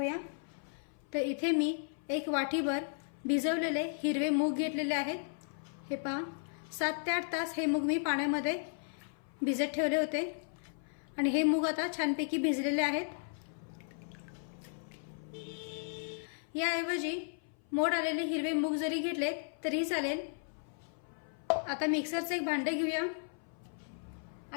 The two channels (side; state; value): right; silent; 54 dB below the other